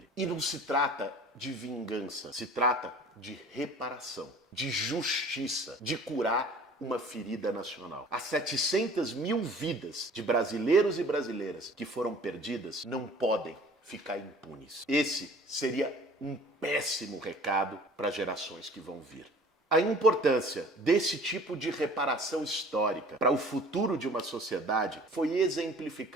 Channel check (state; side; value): normal; both; correlation 0.48